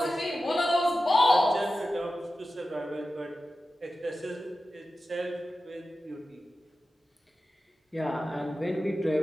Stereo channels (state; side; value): normal; both; correlation 0.93